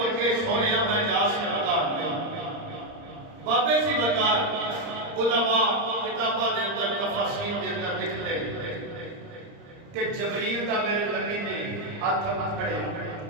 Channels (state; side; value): late; left; 30 ms